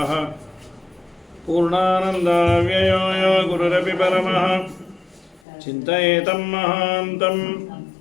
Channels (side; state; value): right; drops out; at 5.4 s